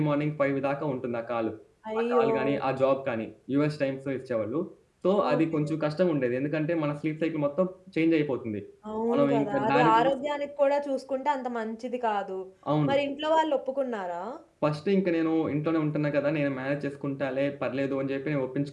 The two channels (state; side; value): identical; both; correlation 1.00